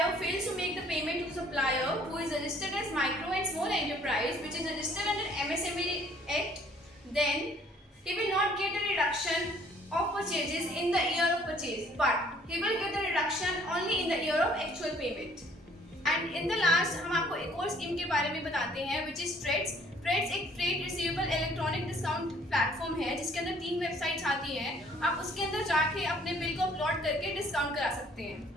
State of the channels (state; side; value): normal; both; correlation 0.59